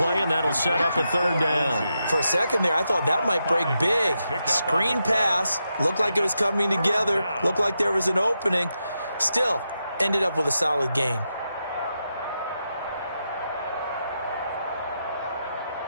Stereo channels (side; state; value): both; inverted; correlation -0.86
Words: and that'll set up a 3rd down. For a second there, I thought that might break big. Screen pass. Looked like it was coming together. Looked like there was an opening. Still, ended up with a solid gain.